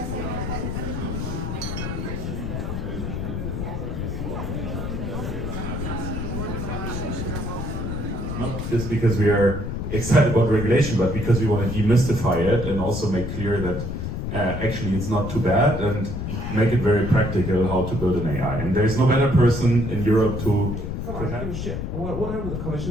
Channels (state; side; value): noise; left; rumble, 4 dB below the sound